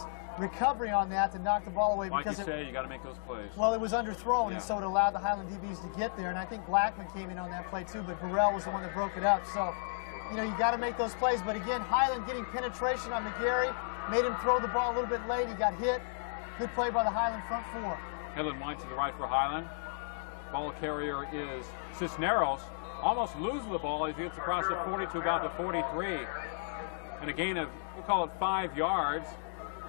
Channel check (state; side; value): silent; right; digital silence